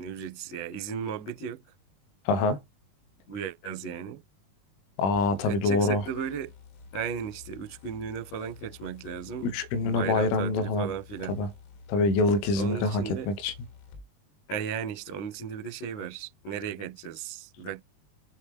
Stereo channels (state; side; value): late; right; 19 ms